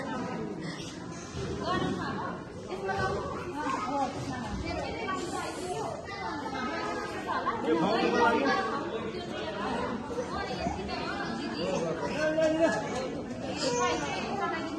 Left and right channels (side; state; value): both; identical; correlation 1.00